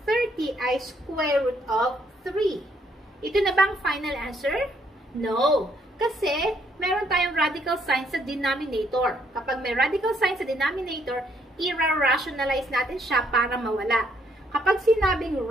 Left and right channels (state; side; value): normal; both; correlation 0.70